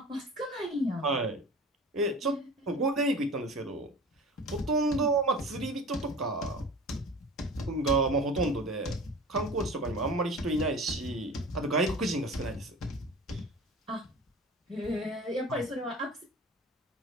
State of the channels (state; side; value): normal; both; correlation 0.37